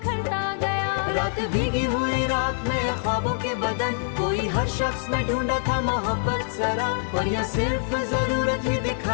गया। रात भीगी हुई रात में ख्वाबों के बदन, कोई हर शख्स में ढूंढा था मोहब्बत जरा, और यह सिर्फ जरूरत ही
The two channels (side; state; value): right; silent; 55 dB below the other